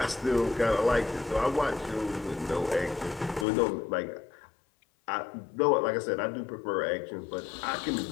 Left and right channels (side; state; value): right; drops out; at 3.5 s